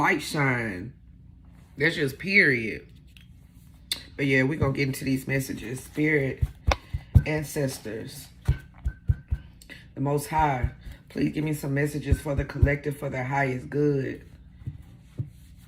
shine. That's just period. But yeah, we're going to get into these messages. Spirit, ancestors, the Most High. Please give me some messages for the collective, for their highest good.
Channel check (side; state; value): both; identical; correlation 1.00